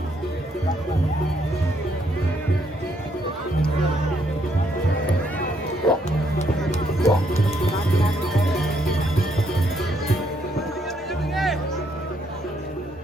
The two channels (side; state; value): both; normal; correlation 0.72